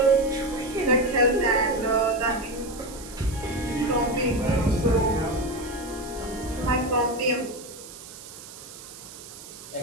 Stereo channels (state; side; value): noise; right; hiss, 15 dB below the sound